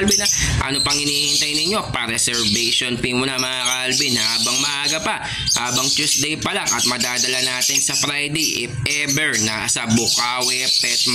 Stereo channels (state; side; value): identical; both; correlation 1.00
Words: Ano pang hinihintay ninyo? Pa-reservation fee muna mga Calvin habang maaga pa, habang Tuesday pa lang, at madadala natin sa Friday if ever nasa Bukawi Pet